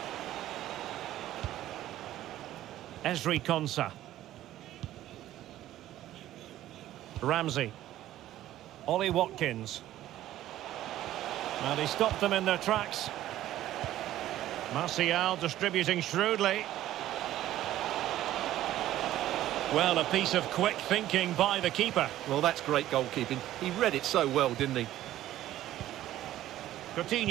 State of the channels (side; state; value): left; quieter; 13.7 dB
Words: Ezri Konsa. Ramsey. Ollie Watkins. And he stopped them in their tracks. Martial distributing shrewdly. Well, a piece of quick thinking by the keeper. Well, that's great goalkeeping. He read it so well, didn't he?